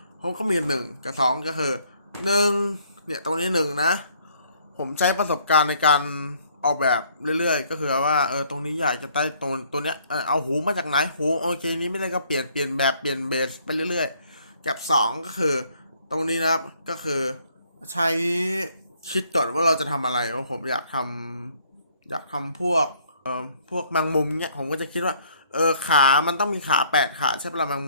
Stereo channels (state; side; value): inverted; both; correlation -0.63